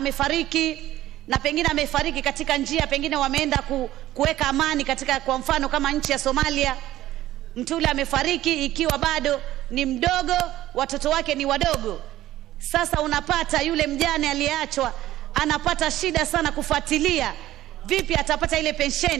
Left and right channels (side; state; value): left; quieter; 14.4 dB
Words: na pengine amefariki katika njia, pengine wameenda kuweka amani katika, kwa mfano kama nchi ya Somalia, mtu yule amefariki ikiwa bado ni mdogo, watoto wake ni wadogo. Sasa unapata yule mjane aliyeachwa anapata shida sana kufuatilia vipi atapata ile